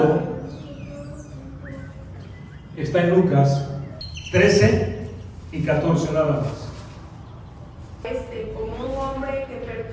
está en Lucas 13 y 14 nada más. Como un hombre que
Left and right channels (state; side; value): identical; both; correlation 1.00